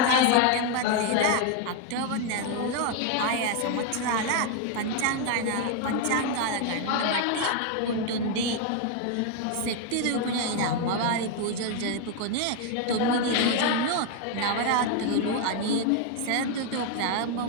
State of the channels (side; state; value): both; different; correlation 0.01